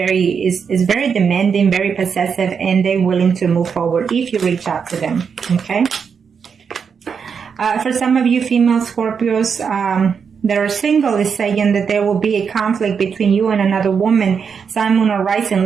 demanding, very possessive, and they're willing to move forward if you reach out to them, okay? For some of you female Scorpios that are single, is saying that there will be a conflict between you and another woman, Sun, Moon, or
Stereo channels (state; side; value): quieter; left; 6.4 dB